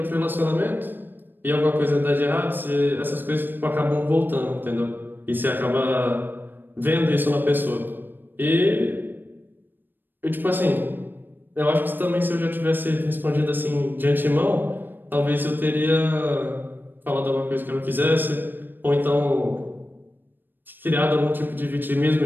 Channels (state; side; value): late; left; 0.093 ms